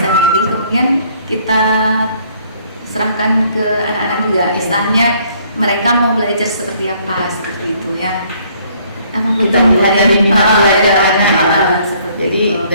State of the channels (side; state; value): both; inverted; correlation -0.62